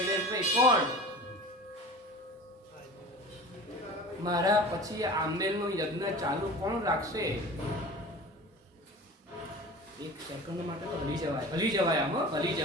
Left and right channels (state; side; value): normal; both; correlation 0.37